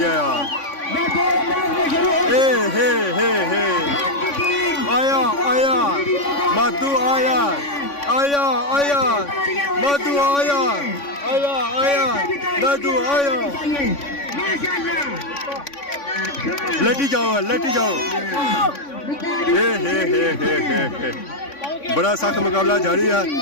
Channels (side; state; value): right; late; 3.5 ms